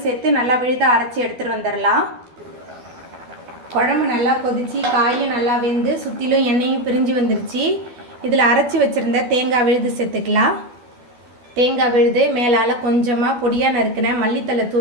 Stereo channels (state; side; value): late; left; 12 ms